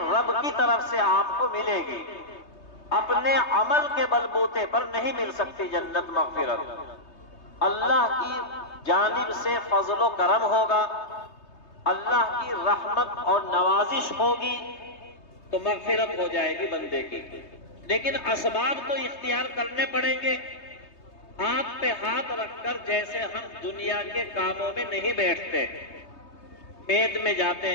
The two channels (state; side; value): late; right; 3.2 ms